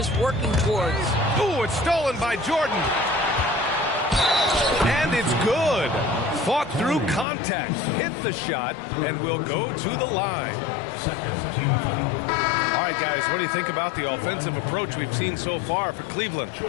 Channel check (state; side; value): drops out; right; at 7.2 s